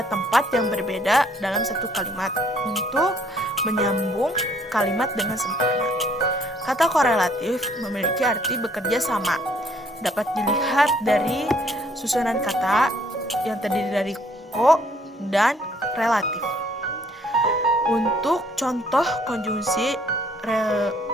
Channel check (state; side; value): normal; both; correlation 0.63